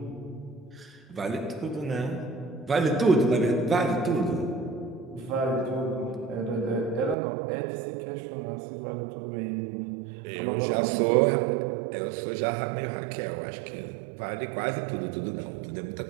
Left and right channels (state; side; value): drops out; left; at 7.2 s